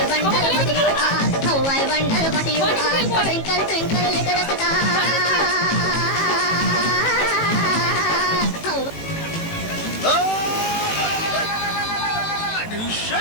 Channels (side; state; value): right; late; 18 ms